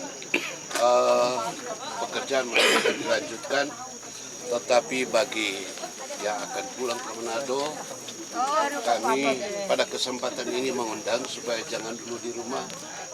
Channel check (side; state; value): both; identical; correlation 1.00